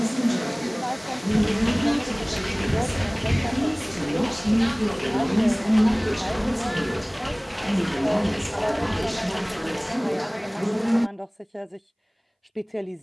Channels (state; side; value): identical; both; correlation 1.00